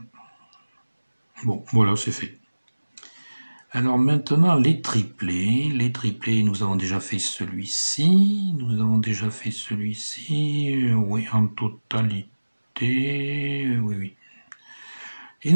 Bon, voilà, c'est fait. Alors maintenant les triplés. Les triplés, nous avons déjà fait celui-ci. Nous avons déjà fait celui-ci. Oui, en totalité. Oui. Et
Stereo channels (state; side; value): inverted; both; correlation -1.00